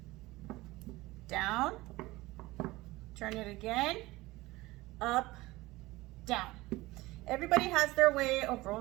down, turn it again, up, down. Everybody has their way of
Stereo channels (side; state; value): left; quieter; 19.7 dB